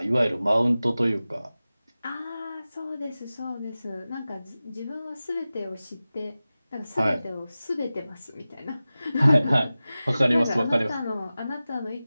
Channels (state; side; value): inverted; both; correlation -0.96